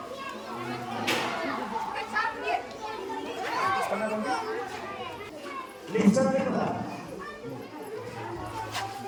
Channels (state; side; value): identical; both; correlation 1.00